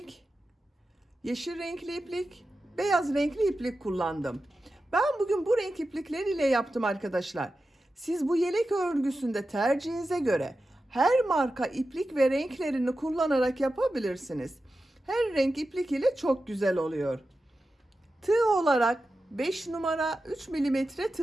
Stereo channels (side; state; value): both; normal; correlation 0.92